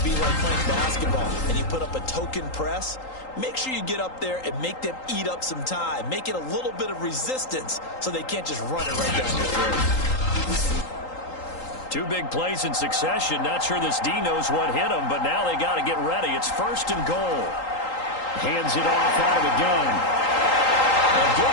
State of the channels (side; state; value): right; late; 3.8 ms